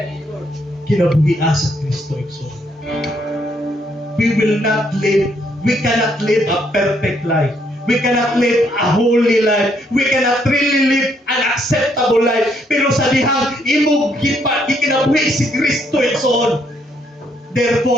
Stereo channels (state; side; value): normal; both; correlation 0.72